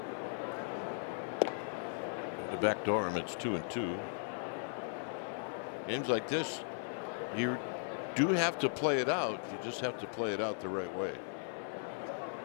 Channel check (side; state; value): right; silent; 53 dB below the other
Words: To backdoor him, it's 2-2. Games like this, you do have to play it out. You just have to play it out the right way.